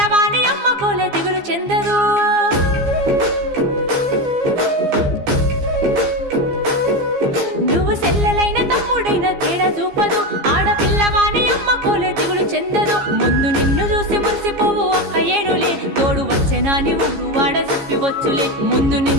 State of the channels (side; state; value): left; late; 15 ms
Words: అమ్మ కోలే దిగులు చెందదు నువ్వు సెల్లెలైన తమ్ముడైన తేడా చూపదు ఆడపిల్లవాని అమ్మ కోలే దిగులు చెందదు ముందు నిన్ను చూసి మురిసిపోవు అక్క ఏనులే తోడు వచ్చెనాని ఊరు వాడ చెప్పివచ్చులే ముందు